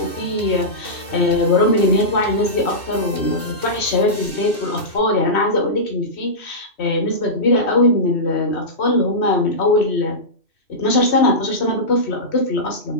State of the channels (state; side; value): late; right; 2.6 ms